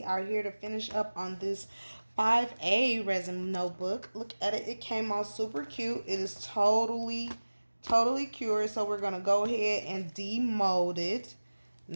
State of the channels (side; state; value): both; inverted; correlation -1.00